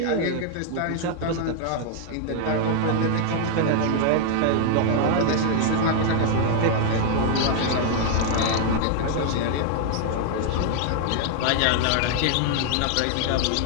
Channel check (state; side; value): different; both; correlation 0.00